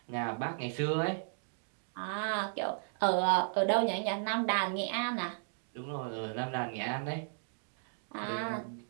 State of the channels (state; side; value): silent; left; digital silence